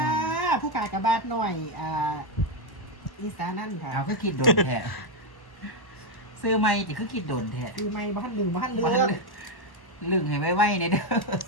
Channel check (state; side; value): late; right; 1.1 ms